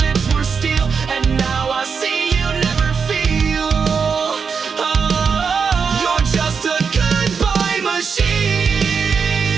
were steel, and now I see you never feel. Oh, you're just a goodbye machine.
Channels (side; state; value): left; quieter; 5.8 dB